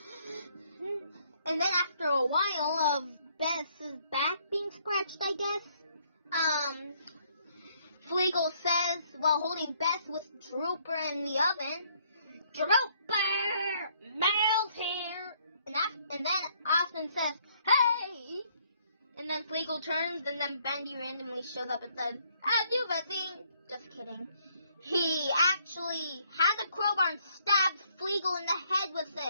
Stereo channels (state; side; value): inverted; both; correlation -0.67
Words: And then after a while of Beth's back being scratched, I guess, Fleagle says, while holding Beth with Drooper in the oven, "Drooper, Mel's here!" And then Austin says, "Hey!" And then Fleagle turns, and then Bendy randomly shows up and says, "Have you seen?" Just kidding. He actually had the crowbar and stabs Fleagle in the head with